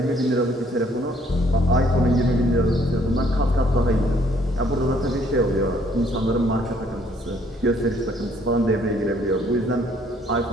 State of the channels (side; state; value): both; normal; correlation 0.64